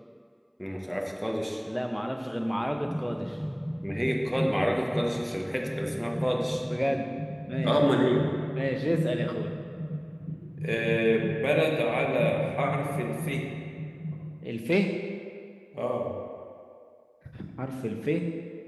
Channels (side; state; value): both; identical; correlation 1.00